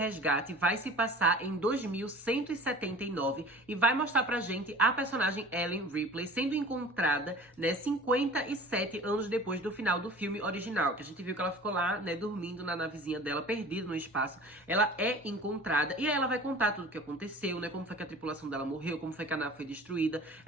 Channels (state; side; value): normal; both; correlation 0.43